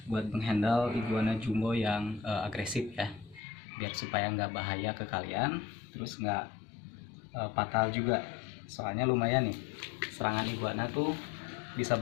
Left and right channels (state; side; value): drops out; right; at 3.4 s